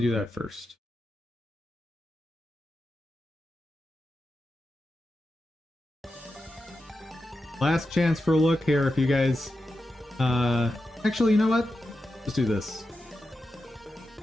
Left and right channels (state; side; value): normal; both; correlation 0.90